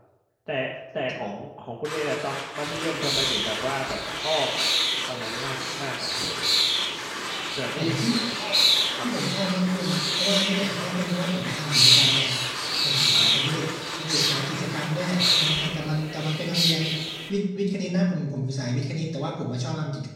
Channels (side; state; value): both; identical; correlation 1.00